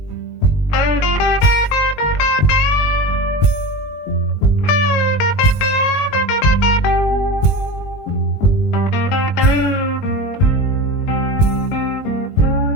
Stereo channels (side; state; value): right; late; 19 ms